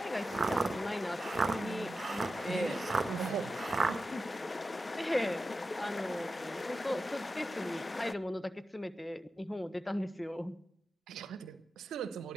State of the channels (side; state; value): both; normal; correlation 0.91